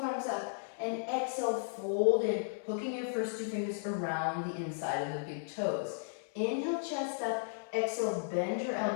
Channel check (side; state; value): right; silent; 54 dB below the other